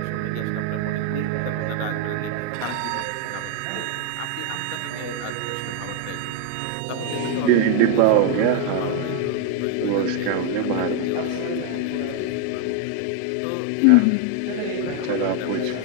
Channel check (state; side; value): different; both; correlation 0.00